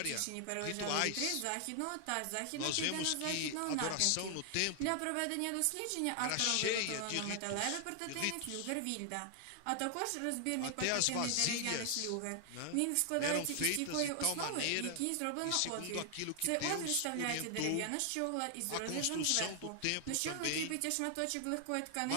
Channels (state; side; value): different; both; correlation 0.00